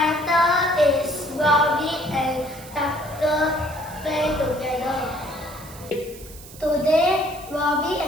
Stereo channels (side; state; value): right; noise; hiss, 18 dB below the sound